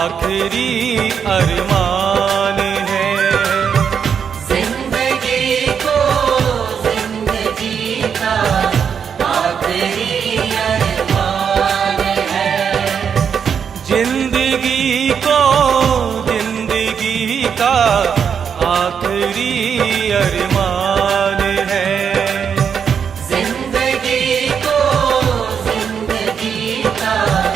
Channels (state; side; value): quieter; left; 7.2 dB